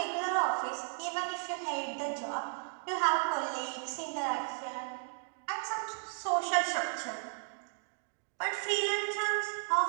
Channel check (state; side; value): silent; left; 55 dB below the other